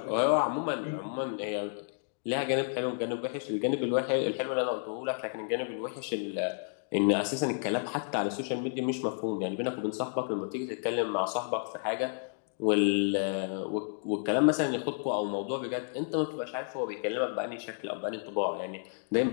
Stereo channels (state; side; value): silent; right; digital silence